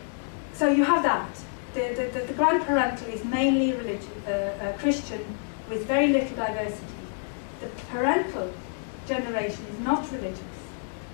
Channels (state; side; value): silent; right; digital silence